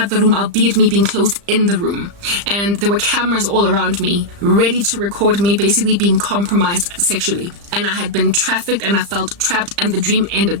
the room, albeit me being closed in the room. And there were cameras all around me, ready to record me basically being compromised sexually. And I had been trafficked, and I felt trapped, and the dream ended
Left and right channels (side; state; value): left; late; 35 ms